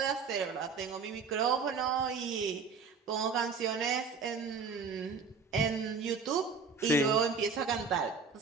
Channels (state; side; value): quieter; left; 5.1 dB